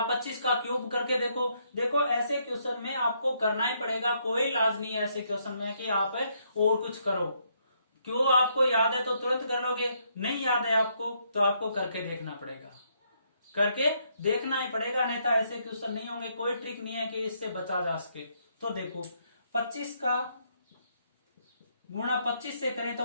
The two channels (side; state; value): both; inverted; correlation -0.73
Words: 25 का क्यूब करके देखो। देखो ऐसे क्वेश्चन में आपको करना ही पड़ेगा, कोई इलाज नहीं है ऐसे क्वेश्चन में कि आप और कुछ करो। क्यों, आपको याद है तो तुरंत कर लोगे, नहीं याद है आपको तो आपको करके देखना पड़ेगा, करके देखना ही पड़ेगा, नहीं तो ऐसे क्वेश्चन नहीं होंगे। कोई ट्रिक नहीं है कि इससे बचा जा सके। तो देखो 25 का गुणा 25 से करें